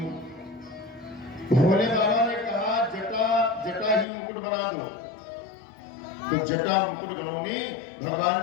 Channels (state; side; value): drops out; right; at 4.0 s